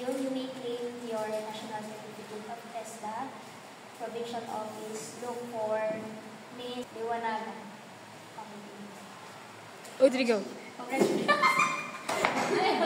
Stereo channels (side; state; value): both; identical; correlation 1.00